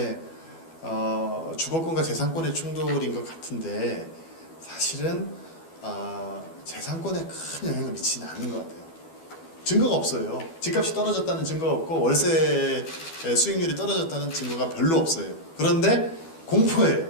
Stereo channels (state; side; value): late; right; 12 ms